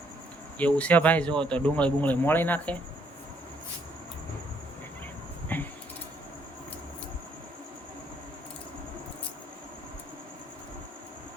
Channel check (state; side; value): normal; both; correlation 0.69